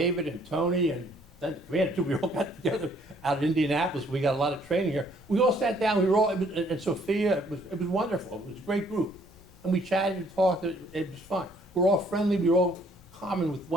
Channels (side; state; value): left; noise; rumble, 24 dB below the sound